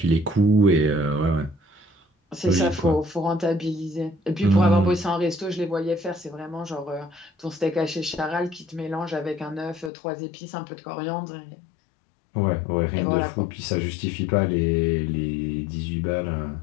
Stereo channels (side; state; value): right; drops out; at 9.9 s